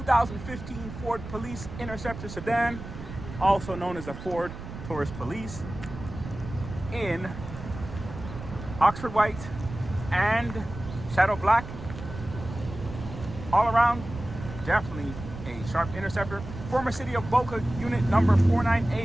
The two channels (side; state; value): right; noise; rumble, 11 dB below the sound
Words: Ford Police Interceptor sedan, also known as a Ford Taurus Police, in Oxford white and shadow black. All around, definitely a sharp Interceptor. Former city of Boca, unit number